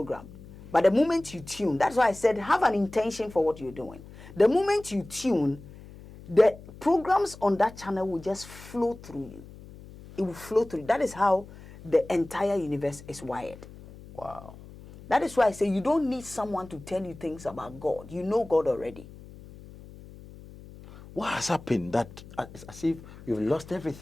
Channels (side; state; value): left; noise; hum, 18 dB below the sound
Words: But the moment you tune, that's why I said have an intention for what you're doing. The moment you tune, the programs on that channel will just flow through you. It will flow through. That is how the entire universe is wired. Wow. That is why I say you don't need someone to tell you things about God. You know God already. What has happened that it's as if you've lost